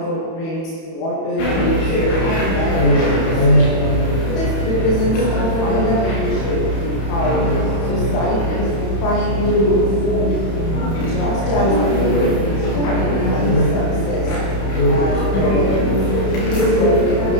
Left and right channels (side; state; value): right; late; 31 ms